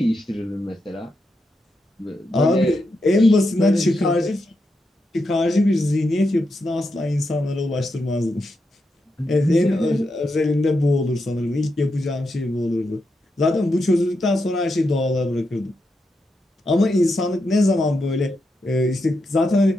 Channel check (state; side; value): normal; both; correlation 0.85